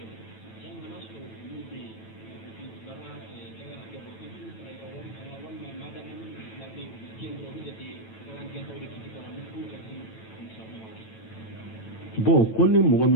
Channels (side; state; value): right; late; 9.1 ms